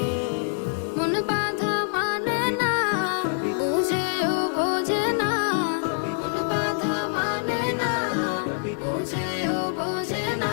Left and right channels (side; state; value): right; silent; digital silence